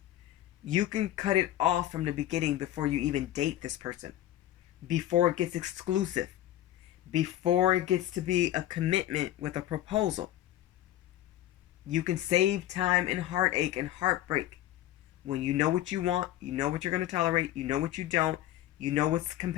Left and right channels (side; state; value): right; quieter; 13.2 dB